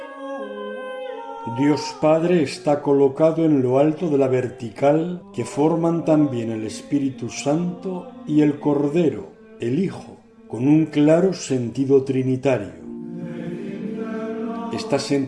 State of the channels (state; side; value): identical; both; correlation 1.00